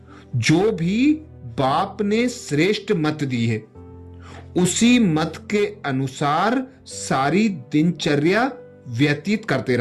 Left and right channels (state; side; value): identical; both; correlation 1.00